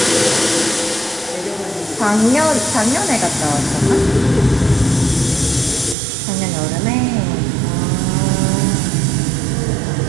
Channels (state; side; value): drops out; left; at 6.0 s